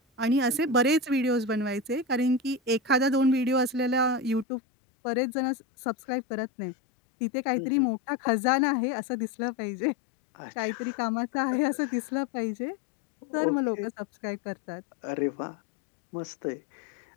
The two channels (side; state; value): right; drops out; at 4.5 s